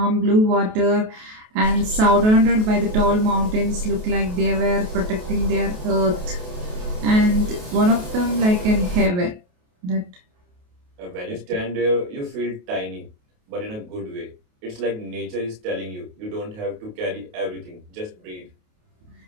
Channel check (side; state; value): left; late; 28 ms